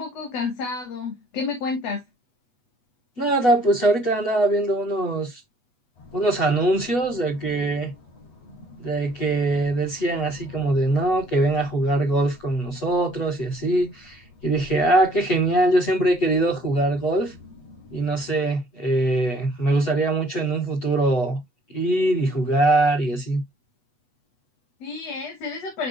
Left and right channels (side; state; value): right; late; 8.2 ms